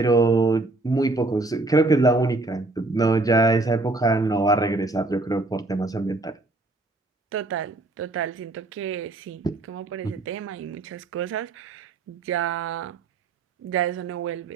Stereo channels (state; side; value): quieter; left; 3.1 dB